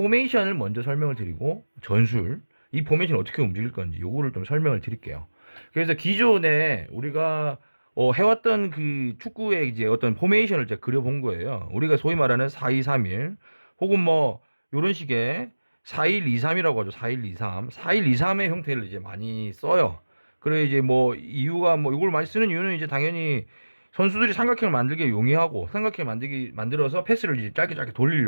먼저 설명을 드리고 전술 이 포메이션이 어떻게 움직일 건지 요거를 좀 설명을 드릴게요. 그래서 기존에 우리가 해왔던 그 축구의 이제 어떤 포메이션을 제가 그려본 거예요. 우리가 소위 말하는 4-2-3-1 혹은 뭐 요런 식의 4-1-2-3이라고 하죠. 4-1-2-3. 4-1-2-3의 형태를 이제 많이 써요. 그래 이제 뭐 이유가 뭐 이걸 많이 쓰는 이유는 이제 당연히 선수들이 삼각형을 만들기 용이하고 삼각형 만들어서 패스를 이제 짧게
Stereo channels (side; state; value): both; inverted; correlation -1.00